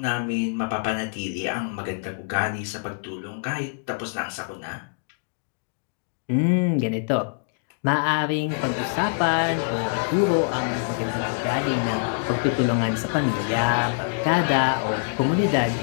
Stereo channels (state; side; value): silent; right; digital silence